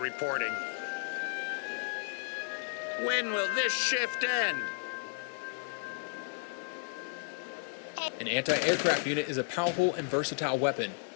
reporting. When will this shift end? An anti-aircraft unit is a powerful and versatile weapon.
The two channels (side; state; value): right; silent; 56 dB below the other